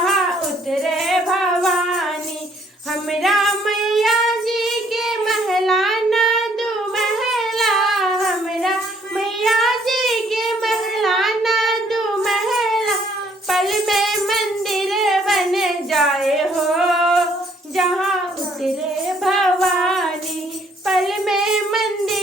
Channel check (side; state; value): both; normal; correlation 0.65